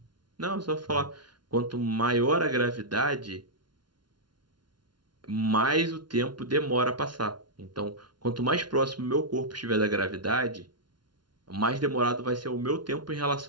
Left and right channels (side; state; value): left; late; 0.71 ms